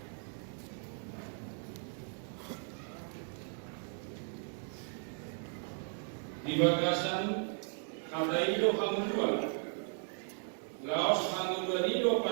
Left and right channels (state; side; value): silent; left; 54 dB below the other